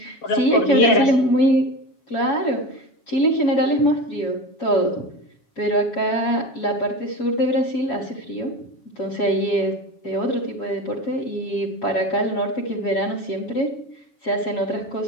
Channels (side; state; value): right; late; 7.2 ms